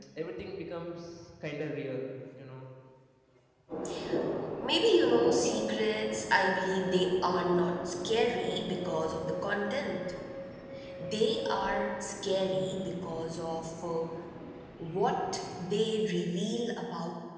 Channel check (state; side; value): identical; both; correlation 1.00